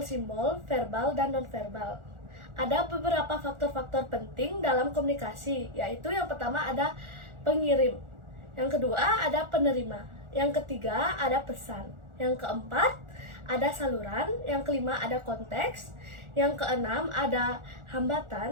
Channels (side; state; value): left; late; 1.4 ms